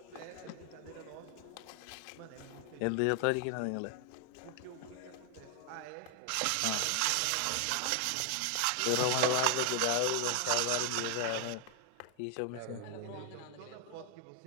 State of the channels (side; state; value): both; different; correlation 0.00